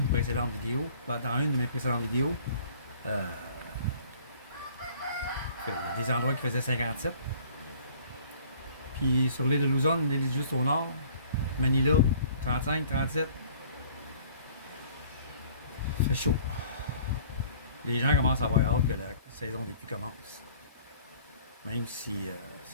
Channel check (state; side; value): inverted; both; correlation -0.53